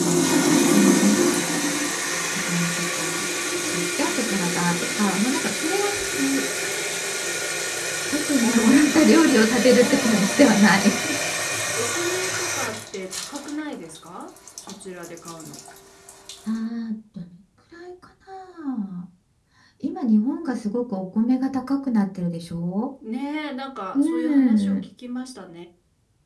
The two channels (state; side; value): identical; both; correlation 1.00